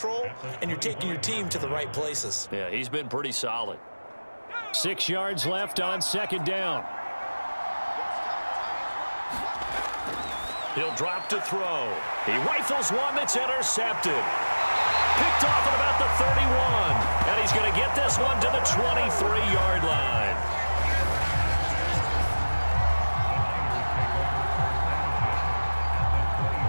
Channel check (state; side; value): inverted; both; correlation -1.00